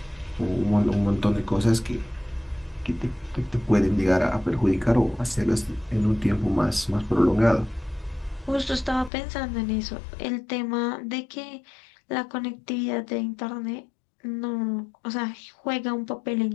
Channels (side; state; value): right; drops out; at 9.1 s